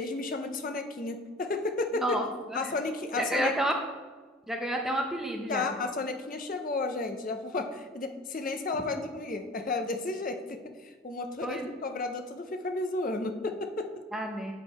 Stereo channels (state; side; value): normal; both; correlation 0.43